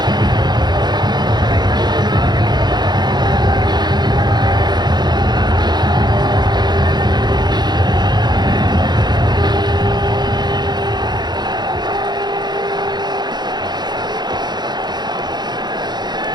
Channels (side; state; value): left; late; 0.21 ms